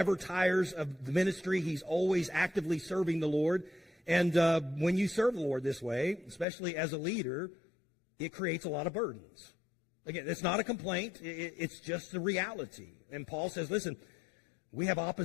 tires of the ministry. He's always actively serving the Lord. And when you serve the Lord this way, especially as a leader, it creates a lot of burdens. Again, it's not a complaint. It's just the reality. And Paul says, listen, we have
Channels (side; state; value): right; drops out; at 6.5 s